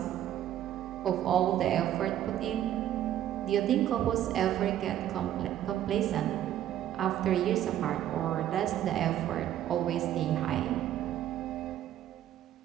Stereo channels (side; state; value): left; quieter; 11.8 dB